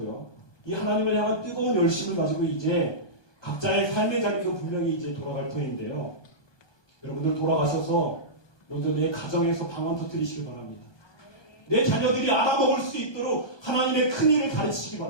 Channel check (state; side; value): late; right; 1.2 ms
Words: 이 하나님을 향한 뜨거운 열심을 가지고 이제 각자의 삶의 자리로 분명히 이제 돌아갈 터인데요. 여러분들 돌아가셔서 먼저 내 가정에서 방언 터뜨리시기 바랍니다. 내 자녀들이 알아먹을 수 있도록 하나님의 큰일을 가르치시기